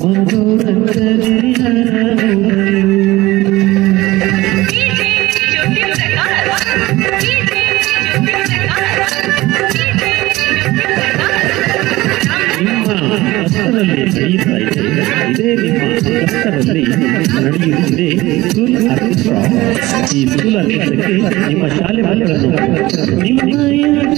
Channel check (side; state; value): left; quieter; 18.8 dB